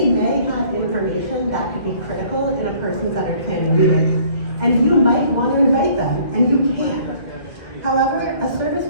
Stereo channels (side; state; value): right; late; 1.9 ms